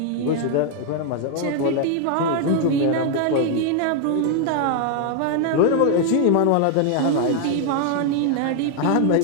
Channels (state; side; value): different; both; correlation 0.00